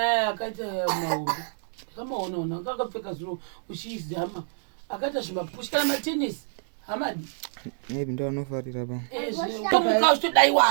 akaita mahombe kamaonaona kakapfeka zviro uchizama akaita zvimapushi kana matenisi hamadi maybe ndo anofarira pa tomuka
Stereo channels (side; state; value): left; silent; digital silence